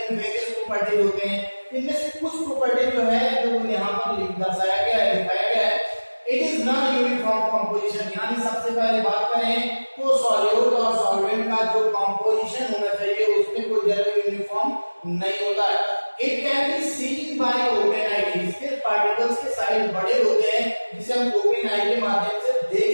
various properties होते हैं। इनमें से कुछ प्रॉपर्टी जो है जो यहाँ पर दर्शाया गया है, दिखाया गया है, it is non uniform composition. यानी सबसे पहले बात करें तो सॉल्यूट और सॉल्वेंट का जो कंपोजिशन होना चाहिए उसमें कोई जरूर यूनिफॉर्म नहीं होता है। It can be seen by open eye, इसके पार्टिकल्स के साइज बड़े होते हैं जिसे हम ओपन आई के माध्यम से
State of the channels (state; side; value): inverted; both; correlation -1.00